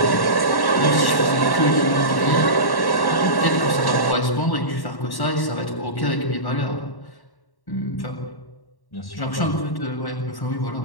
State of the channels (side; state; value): right; late; 1.1 ms